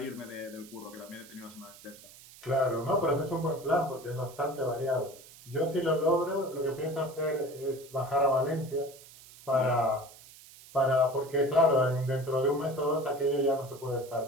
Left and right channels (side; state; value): right; noise; hiss, 20 dB below the sound